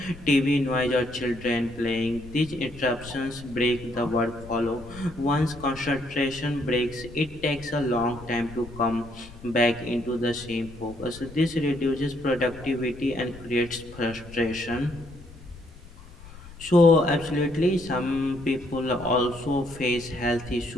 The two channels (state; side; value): noise; left; rumble, 18 dB below the sound